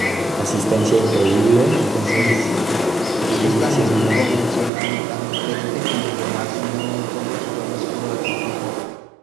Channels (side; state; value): left; drops out; at 4.7 s